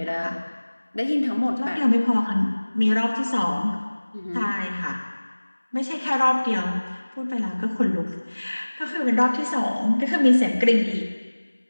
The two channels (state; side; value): inverted; both; correlation -1.00